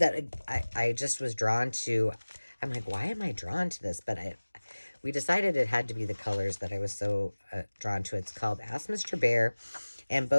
I just was drawn to. I'm like, why am I drawn to this? But we decided it had to be the colors that I was so drawn to. It's called Ask Mr. Bear, and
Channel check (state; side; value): inverted; both; correlation -1.00